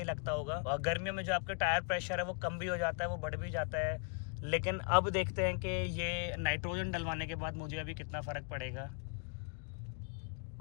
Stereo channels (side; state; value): right; quieter; 37.5 dB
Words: लगता होगा। और गर्मियों में जो आपके टायर प्रेशर है वो कम भी हो जाता है, वो बढ़ भी जाता है। लेकिन अब देखते हैं कि ये नाइट्रोजन डलवाने के बाद मुझे अभी कितना फ़र्क पड़ेगा।